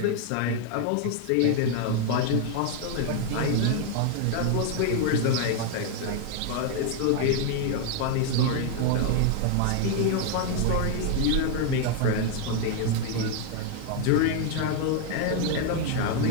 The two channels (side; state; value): both; different; correlation 0.00